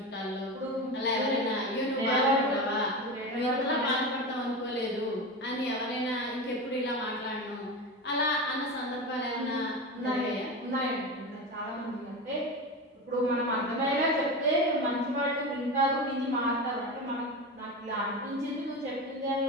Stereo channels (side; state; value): both; normal; correlation 0.23